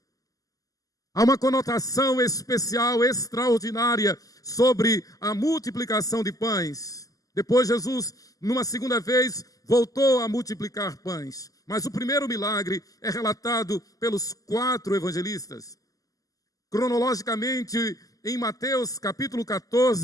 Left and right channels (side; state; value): right; late; 0.17 ms